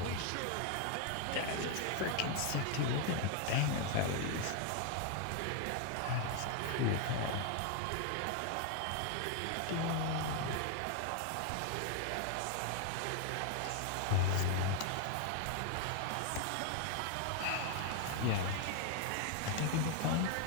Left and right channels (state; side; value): different; both; correlation 0.00